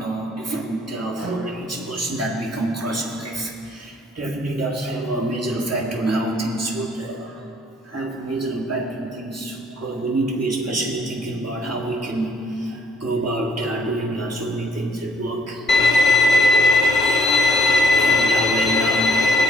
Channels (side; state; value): both; normal; correlation 0.65